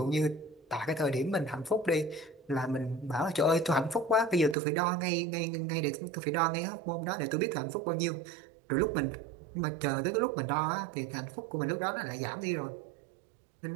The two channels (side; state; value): left; drops out; at 4.5 s